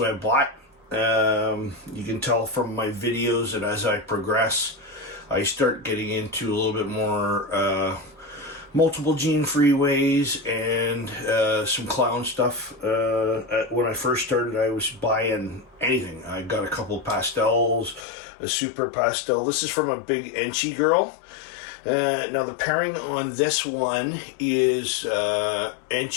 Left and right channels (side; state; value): right; drops out; at 18.1 s